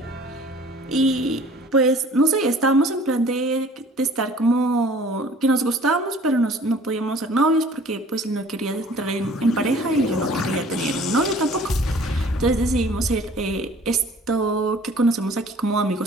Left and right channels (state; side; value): normal; both; correlation 0.50